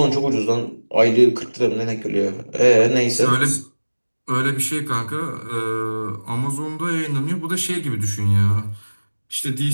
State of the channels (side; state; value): both; inverted; correlation -1.00